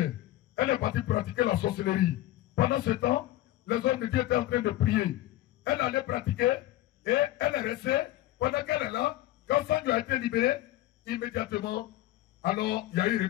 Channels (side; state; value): right; quieter; 15.4 dB